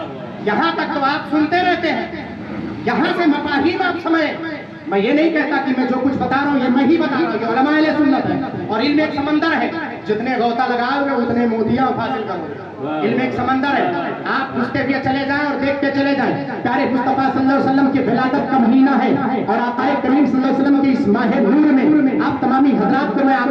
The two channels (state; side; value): identical; both; correlation 1.00